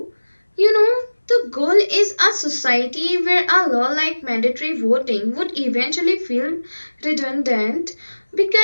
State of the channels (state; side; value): inverted; both; correlation -1.00